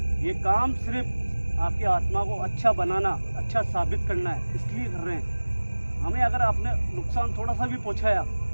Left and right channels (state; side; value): inverted; both; correlation -1.00